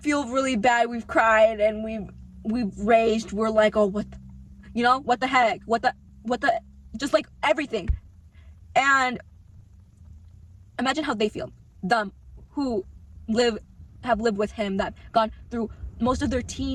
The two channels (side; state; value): both; identical; correlation 1.00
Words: really bad. We've cried and we've raged. We're like, oh, what the heck? What the, just like everything. And imagine how they feel. Them who have lived with him, that gone through most of their